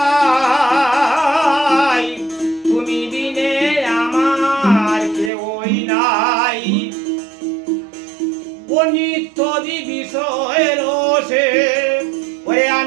তুমি বিনে আমার কেউই নাই। অনিত্যদি বিষয়ের রসে ওরে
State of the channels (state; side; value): drops out; left; at 5.3 s